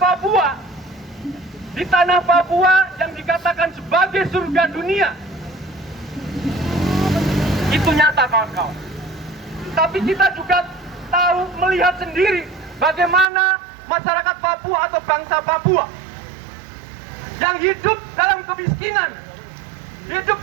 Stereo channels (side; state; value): left; drops out; at 13.2 s